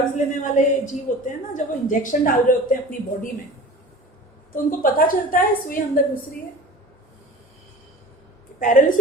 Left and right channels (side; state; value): both; normal; correlation 0.39